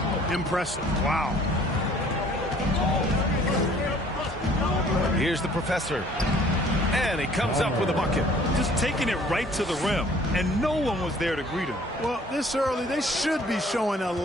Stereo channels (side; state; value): both; normal; correlation 0.55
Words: Impressive. Wow. Here's the professor. And he comes up with a bucket. Just taking it right to the rim, and no one was there to greet him. Well, this early, they should be showing a